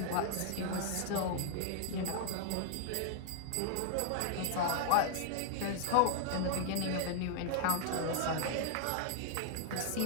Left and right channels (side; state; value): both; different; correlation -0.01